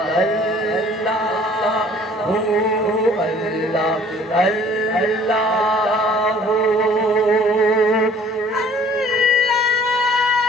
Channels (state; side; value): normal; both; correlation 0.53